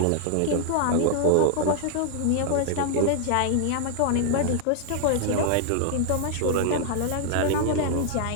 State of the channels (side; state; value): both; different; correlation 0.00